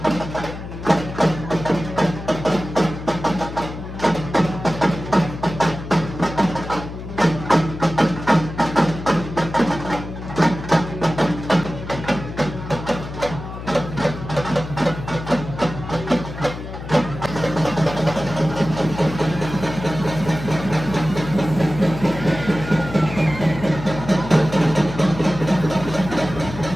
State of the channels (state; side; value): noise; left; hum, 10 dB below the sound